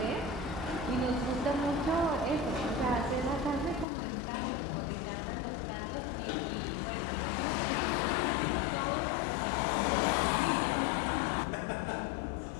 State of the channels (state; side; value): drops out; right; at 3.9 s